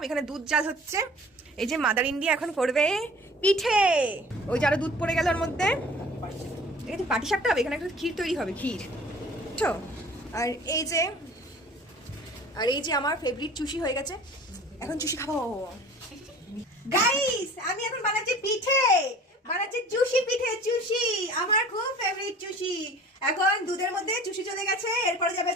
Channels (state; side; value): normal; both; correlation 0.46